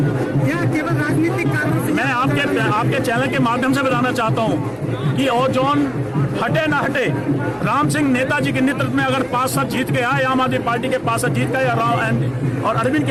या केवल राजनीतिक कारणों से? मैं आपके चैनल के माध्यम से बताना चाहता हूं कि ओजोन हटे ना हटे, राम सिंह नेताजी के नेतृत्व में अगर 5 साल जीत के आए, आम आदमी पार्टी के 5 साल जीत के आए और अरविंद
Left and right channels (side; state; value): both; identical; correlation 1.00